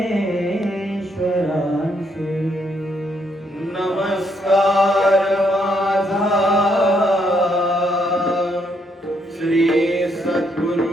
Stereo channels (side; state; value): both; normal; correlation 0.74